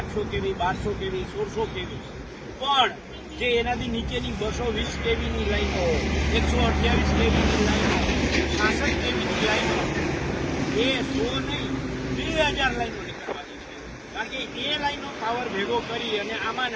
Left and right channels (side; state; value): both; identical; correlation 1.00